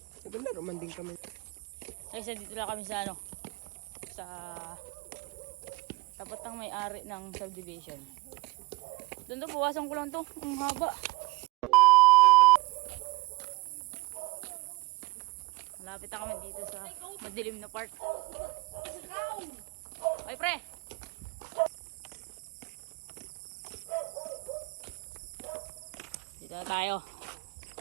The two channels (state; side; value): quieter; left; 23.5 dB